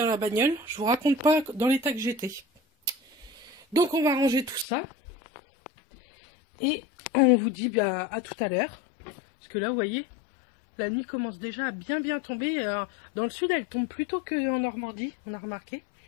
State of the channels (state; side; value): drops out; right; at 4.7 s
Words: la bagnole, je vous raconte pas dans l'état que j'étais. Donc on va ranger tout ça. Et on vous dit bah, à tout à l'heure. Parce que là, vous voyez, la nuit commence déjà à bien tomber. Dans le sud, elle tombe plus tôt qu'en Normandie, on a remarqué.